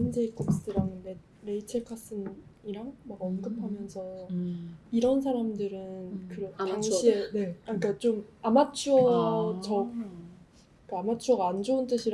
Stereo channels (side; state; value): both; identical; correlation 1.00